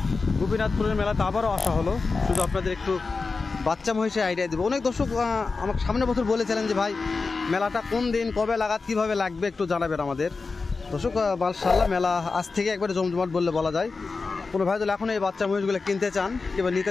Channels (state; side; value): quieter; right; 4.2 dB